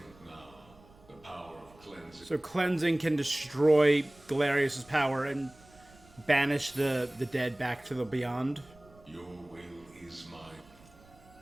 now. The power of cleansing. So cleansing can destroy Galerius' power and banish the dead back to the beyond. Your will is mine.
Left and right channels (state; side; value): noise; right; rumble, 26 dB below the sound